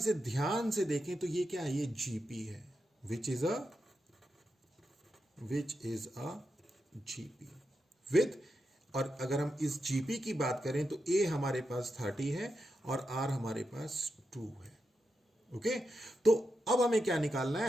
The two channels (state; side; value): normal; both; correlation 0.87